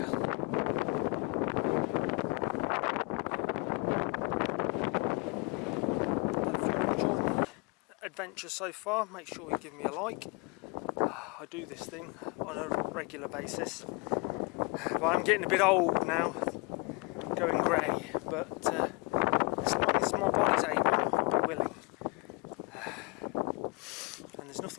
Adventure so far, make sure you give me a like. I do this thing on a regular basis, but I'm getting a bit old now, going grey. but as long as my body's able, I'll be willing. And there's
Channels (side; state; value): right; quieter; 28.0 dB